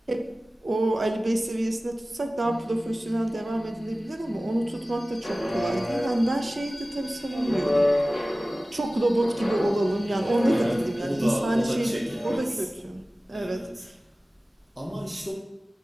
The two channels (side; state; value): both; normal; correlation 0.97